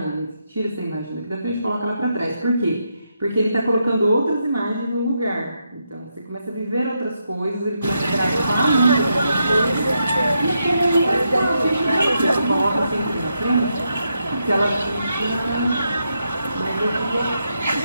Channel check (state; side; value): inverted; both; correlation -0.82